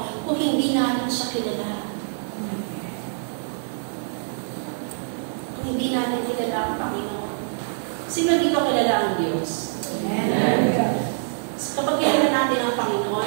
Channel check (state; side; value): silent; left; 62 dB below the other